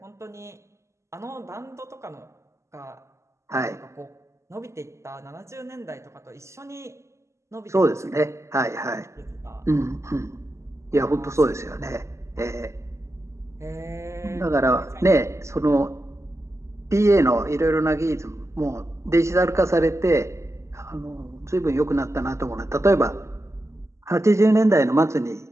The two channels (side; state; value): left; late; 0.14 ms